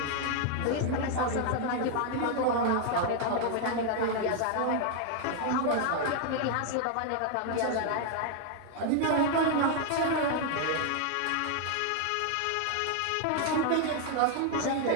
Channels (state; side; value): different; both; correlation 0.00